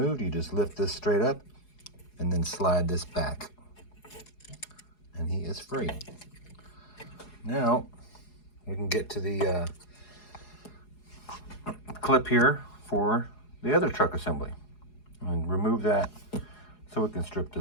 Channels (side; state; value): right; late; 4.8 ms